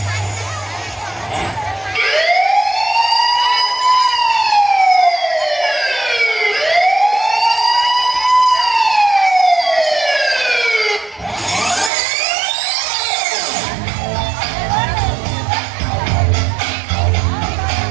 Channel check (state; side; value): drops out; left; at 11.9 s